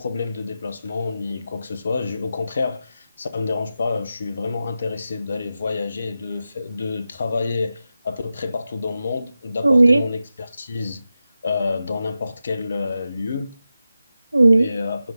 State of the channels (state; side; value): inverted; both; correlation -0.91